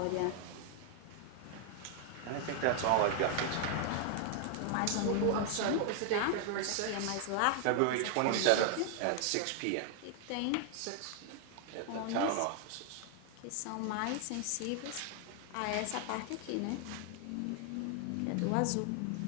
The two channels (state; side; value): different; both; correlation 0.00